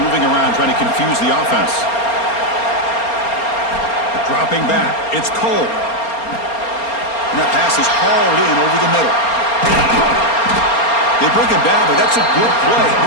moving around trying to confuse the offense. Dropping back. It's Cole. And that pass is hauled in over the middle. They bring him down, but that's a good play.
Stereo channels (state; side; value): late; right; 4.3 ms